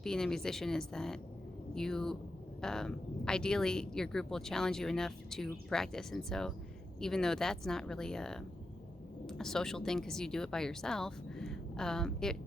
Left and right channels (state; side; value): normal; both; correlation 0.88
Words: being a musician is that you ideally your group will challenge you enough to practice. And so even though that's not really a social thing because you do it by yourself, it